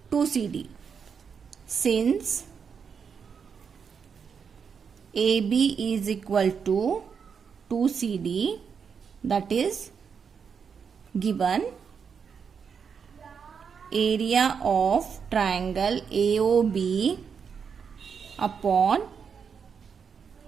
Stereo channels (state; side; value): quieter; left; 6.5 dB